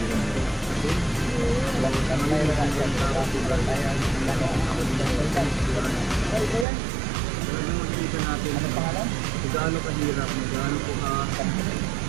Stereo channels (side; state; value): left; drops out; at 6.7 s